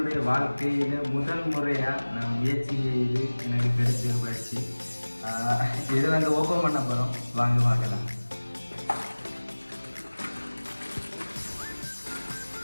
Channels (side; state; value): both; inverted; correlation -1.00